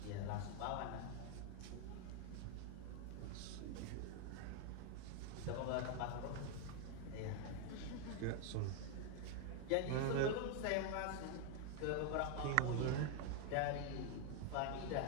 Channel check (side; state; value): both; different; correlation 0.01